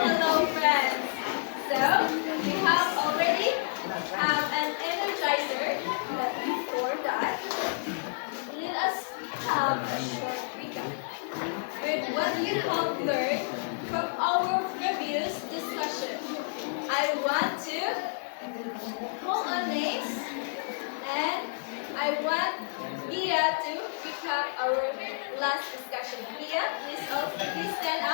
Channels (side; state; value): right; silent; digital silence